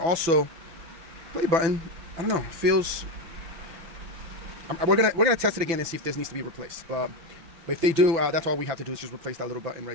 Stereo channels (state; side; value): late; left; 6.0 ms